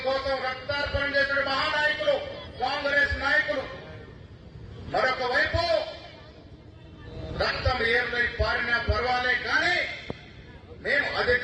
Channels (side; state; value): both; identical; correlation 1.00